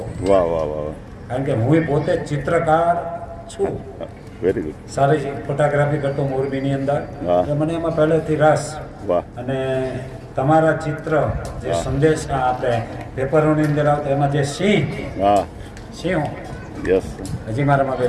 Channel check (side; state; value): both; identical; correlation 1.00